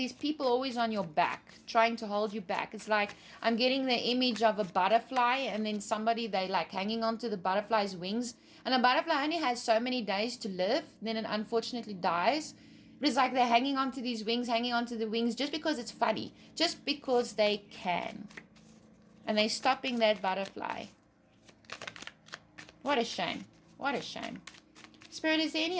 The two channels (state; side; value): identical; both; correlation 1.00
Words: people always on your back, trying to hold you back. It's like I'm getting the image of a butterfly and then somebody, they like hanging onto the butterfly's wings. And a butterfly only has so many days to live. Then it unfortunately dies. But it's like they're hanging onto these wings, hanging onto the wings just because it's funny. Just because they can. And they're stopping that butterfly. What a shame. What a shame. Spirit, is there any